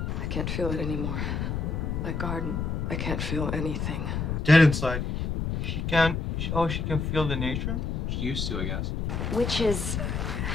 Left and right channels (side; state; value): left; noise; rumble, 1 dB below the sound